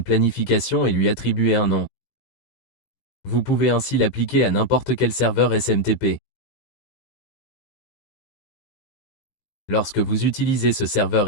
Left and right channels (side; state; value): right; late; 17 ms